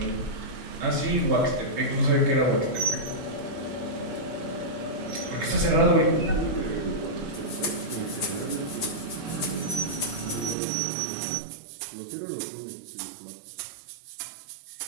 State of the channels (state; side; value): drops out; left; at 10.6 s